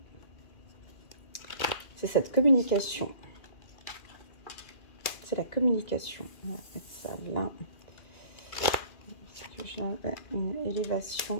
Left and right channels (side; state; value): right; late; 2.4 ms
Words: C'est cette communication. C'est la communication. On va mettre ça là. Une